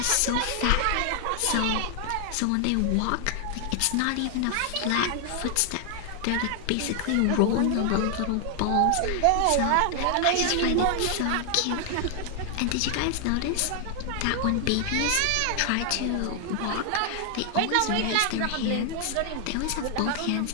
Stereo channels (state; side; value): different; both; correlation 0.00